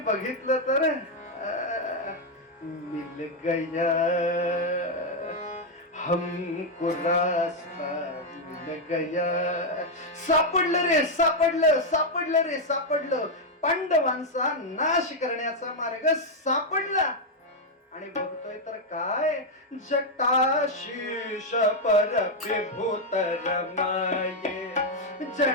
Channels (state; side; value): normal; both; correlation 0.01